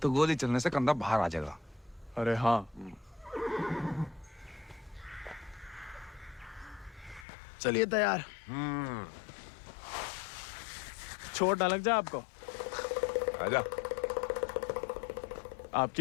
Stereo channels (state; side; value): drops out; right; at 7.2 s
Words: तो गोली चलने से कंधा बाहर आ जाएगा। अरे हाँ, चलिए तैयार। चोट ना लग जाए आपको। आजा।